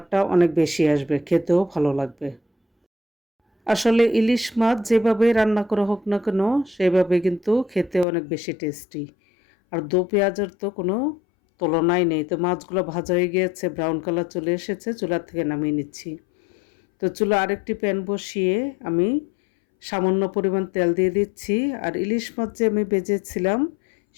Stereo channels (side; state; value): right; drops out; at 8.1 s